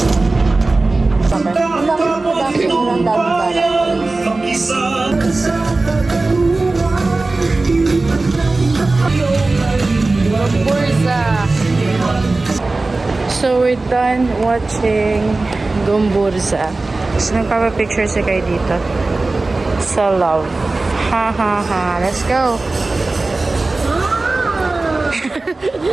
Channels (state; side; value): quieter; left; 3.3 dB